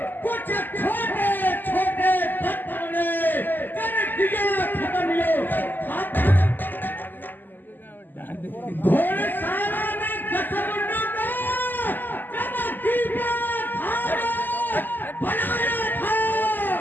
कुछ छोटे छोटे तत्वों ने कर दिया खत्म। यो घोड़शाला में दसमुंडों को जब दीपा बनाया था,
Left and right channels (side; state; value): right; late; 0.089 ms